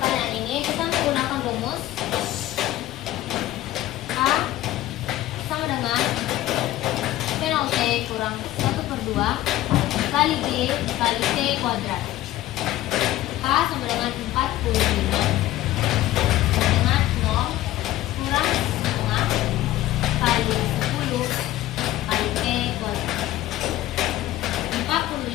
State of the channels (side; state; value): right; quieter; 15.1 dB